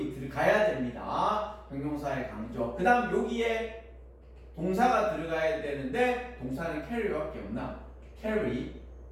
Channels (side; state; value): both; identical; correlation 1.00